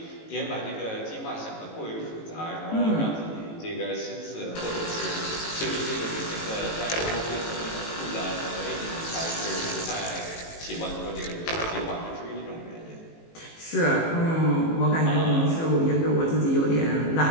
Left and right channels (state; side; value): late; right; 18 ms